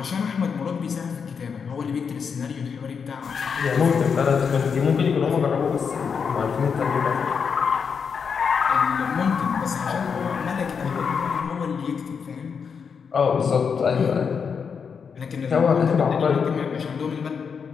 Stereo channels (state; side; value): quieter; right; 6.2 dB